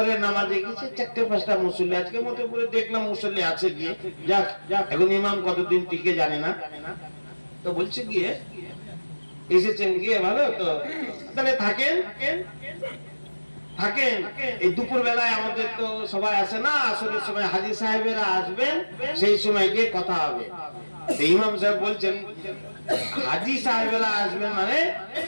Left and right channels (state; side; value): inverted; both; correlation -1.00